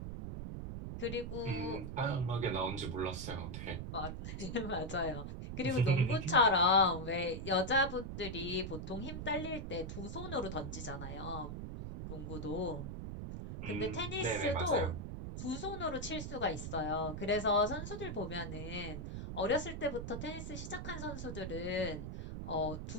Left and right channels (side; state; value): right; noise; rumble, 6 dB below the sound